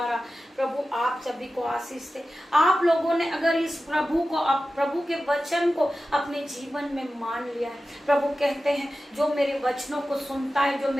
प्रभु आप सभी को आशीष दे। आप लोगों ने अगर इस प्रभु के वचन को अपने जीवन में मान लिया है, प्रभु कहते हैं, जो मेरे वचनों को सुनता है, जो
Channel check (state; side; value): normal; both; correlation 0.94